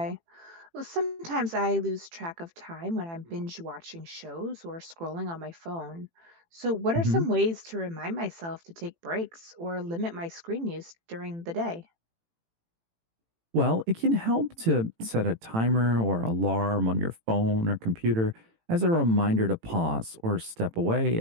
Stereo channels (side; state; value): left; late; 18 ms